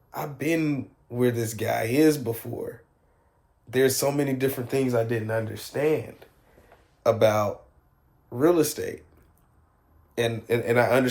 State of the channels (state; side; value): identical; both; correlation 1.00